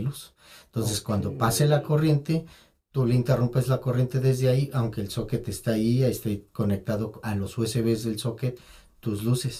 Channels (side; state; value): both; identical; correlation 1.00